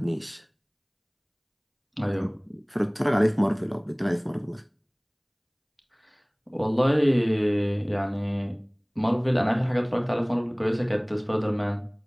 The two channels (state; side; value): identical; both; correlation 1.00